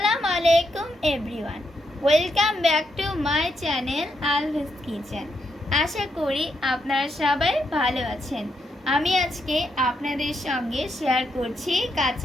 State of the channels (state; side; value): normal; both; correlation 0.80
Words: আলাইকুম everyone, welcome back to my channel Alvi's kitchen. আশা করি আপনারা সবাই ভালো আছেন। আমি আজকে আপনাদের সঙ্গে শেয়ার করছি